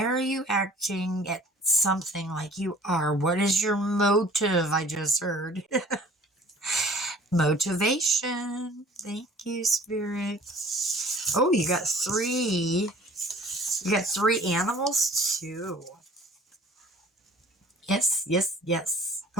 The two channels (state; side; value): normal; both; correlation 0.51